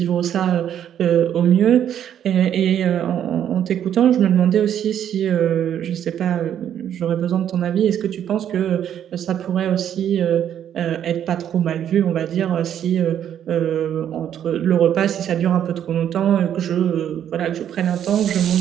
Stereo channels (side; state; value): left; quieter; 9.9 dB